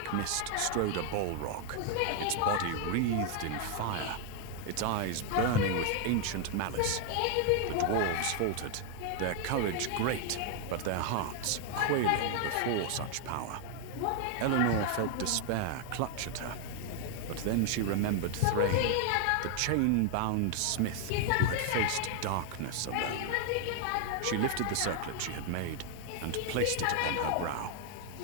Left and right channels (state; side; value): different; both; correlation 0.00